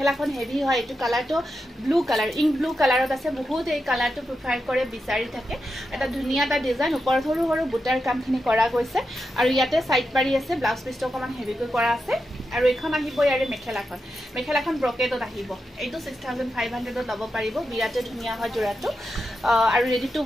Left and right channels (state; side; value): normal; both; correlation 0.88